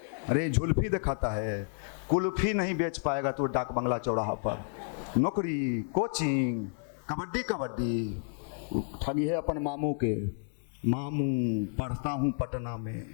अरे झुल्फी दिखाता है। कुल्फी नहीं बेच पाएगा तो डाक बंगला चौराहा पर। नौकरी, कोचिंग, कबड्डी कबड्डी, ठगी है अपन मामू के। मामू पढ़ता हूँ पटना में,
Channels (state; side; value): silent; right; digital silence